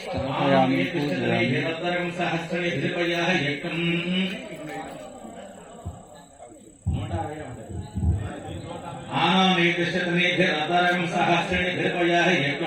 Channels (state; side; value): identical; both; correlation 1.00